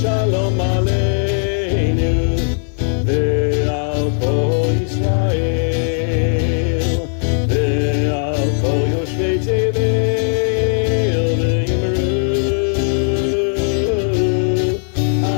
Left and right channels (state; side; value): silent; right; 58 dB below the other